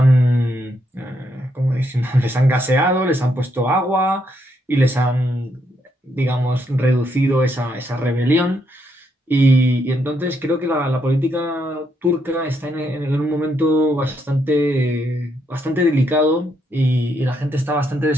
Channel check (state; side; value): normal; both; correlation 0.76